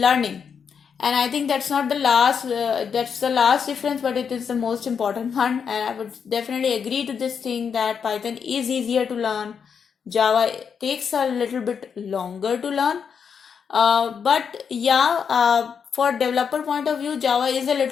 and I think that's not the last. That's the last difference, but it is the most important one. And I would definitely agree to this thing that Python is easier to learn. Java takes a little bit longer to learn. But yeah, for developer point of view, Java is a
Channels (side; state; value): right; quieter; 6.8 dB